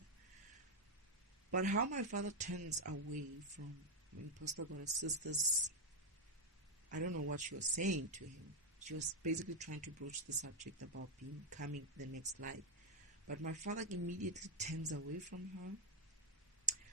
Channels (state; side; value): normal; both; correlation 0.01